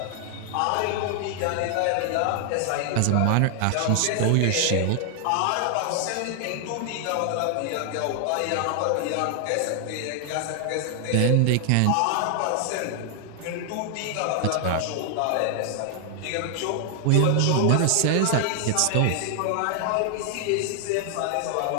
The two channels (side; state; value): both; different; correlation 0.00